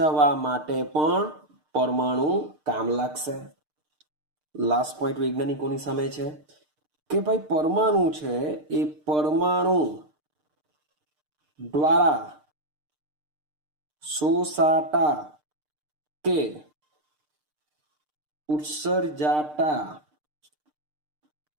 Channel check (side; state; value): left; late; 6.6 ms